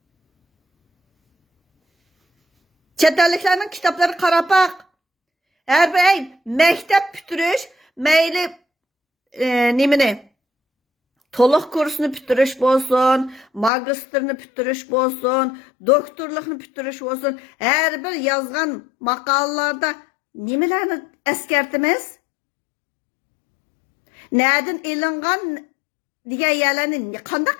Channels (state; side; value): drops out; right; at 13.7 s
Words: Chet elliklarning kitoblari qarab baq. Har bir maktab bitirish, mayli nimani? To'liq kursni bitirish bo'lsin, magistrni bitirish bo'lsin, doktorlikni bitirish bo'lsin, har bir yozgan maqolalarda nimalarni eskartimiz? Nereden ilingan degan yerlarni qanday